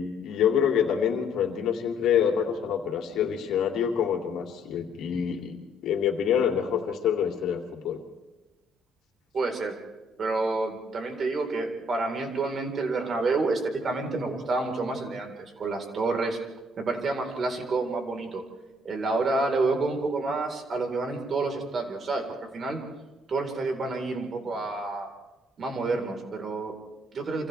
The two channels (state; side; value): normal; both; correlation 0.65